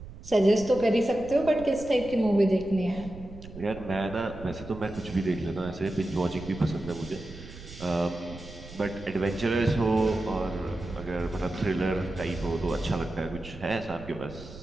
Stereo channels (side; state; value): right; noise; rumble, 15 dB below the sound